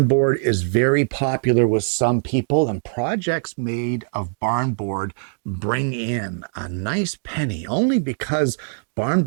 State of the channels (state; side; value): silent; left; digital silence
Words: board is very popular with some people, and projects made of barn board bring in a nice penny only because barn